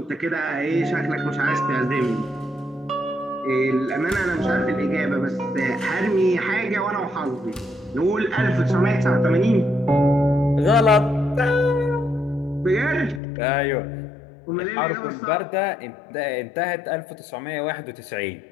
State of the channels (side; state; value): right; drops out; at 13.2 s